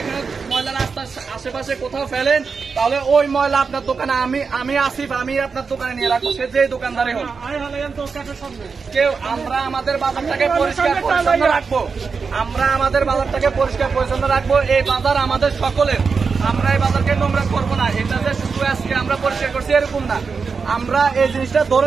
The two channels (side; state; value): left; quieter; 5.2 dB